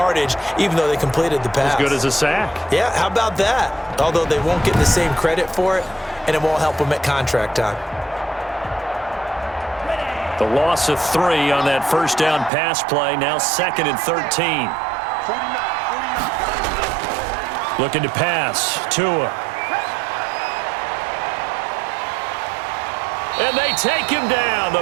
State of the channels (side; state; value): left; drops out; at 12.5 s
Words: even though they completed the pass. As good as a sack. Yeah, how about that? Although they won't get the same credit for it, and it won't help them at contract time. The loss of 3 on that first down pass play. Now 2nd and 13. Looking to pass. Tua. And they take him down.